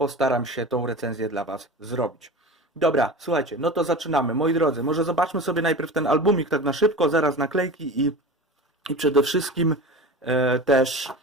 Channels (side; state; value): both; normal; correlation 0.32